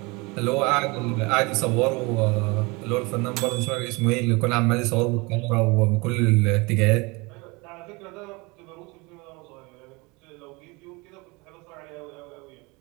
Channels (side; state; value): left; quieter; 26.1 dB